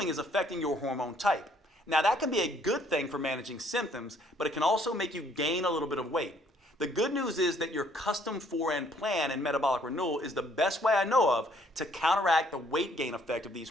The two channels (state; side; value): normal; both; correlation 0.64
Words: is affecting your hormone type. Now, that can be a good thing for managing symptoms, but it can also make you gain a little bit of weight. The good news is that your custom 4N plan in Metabolic Renewal is the best way I know of to counteract the weight gain effect of these